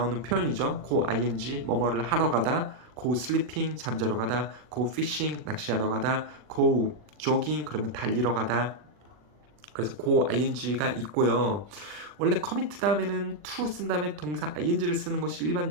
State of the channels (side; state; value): left; late; 40 ms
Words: 표현이죠. 고 ing, 뭐뭐를 하러 가다, go sleeping, 잠자러 가다, go fishing, 낚시하러 가다, go jogging, 그러면 달리러 가다. 그래서 go ing가 있고요. 원래 commit 다음에는 to 쓴 다음에 동사 ing를 쓰는 것이